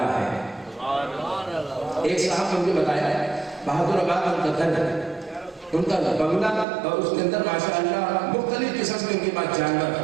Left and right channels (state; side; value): drops out; left; at 6.7 s